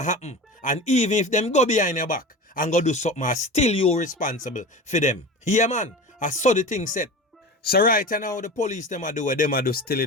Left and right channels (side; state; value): both; normal; correlation 0.31